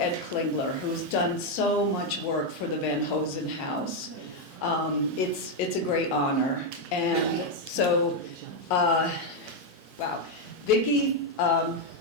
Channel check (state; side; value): normal; both; correlation 0.02